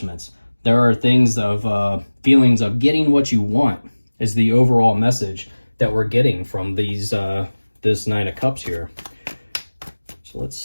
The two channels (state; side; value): inverted; both; correlation -1.00